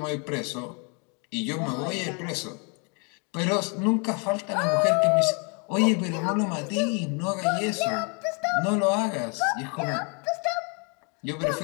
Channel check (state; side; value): quieter; right; 35.4 dB